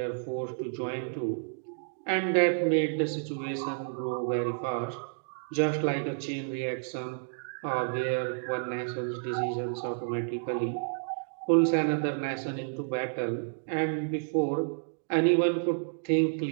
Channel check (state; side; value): silent; left; digital silence